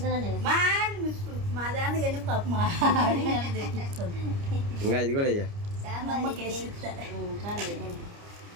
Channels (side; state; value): left; late; 29 ms